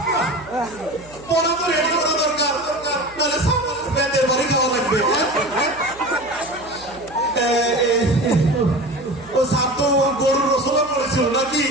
পড়া তো রেডি করা দরকার, নাহলে ব্যান্ডের বাড়ি খাওয়া লাগবে। ও সাপ তো গরুর রসলা পড়েছিল নাকি?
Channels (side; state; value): right; noise; hum, 22 dB below the sound